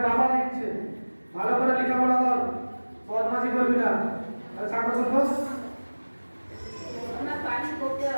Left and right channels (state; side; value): inverted; both; correlation -1.00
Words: বাবা লিখছে। ভালো করে লেখাপড়া কর, বদমাশি করবি না। আর সাক্ষর করবো।